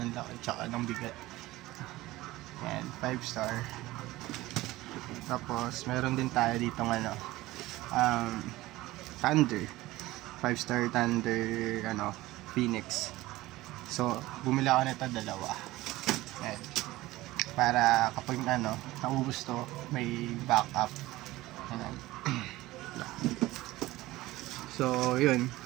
ng laki tsaka ng bigat. Yan, 5 star. Tapos meron din tayo dito Thunder. 5 star Thunder Phoenix. So bumili ako nito dalawa. Yan. Para kapag naubos to, may backup. Yan. So yun,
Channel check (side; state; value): left; quieter; 18.0 dB